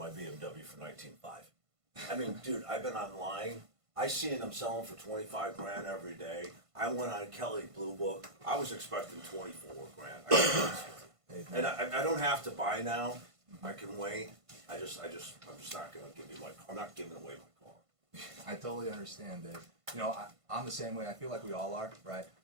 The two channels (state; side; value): late; left; 1.5 ms